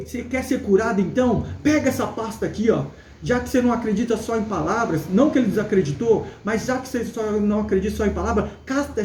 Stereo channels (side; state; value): both; identical; correlation 1.00